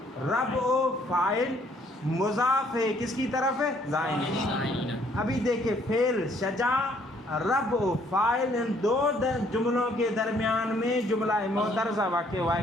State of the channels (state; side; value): normal; both; correlation 0.64